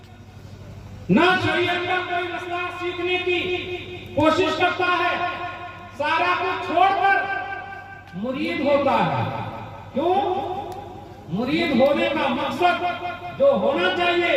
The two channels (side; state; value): both; identical; correlation 1.00